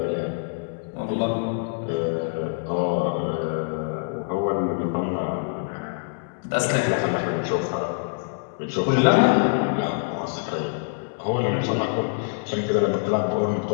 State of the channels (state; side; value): silent; right; digital silence